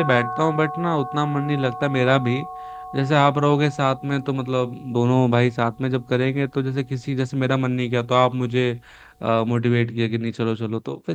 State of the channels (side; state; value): both; identical; correlation 1.00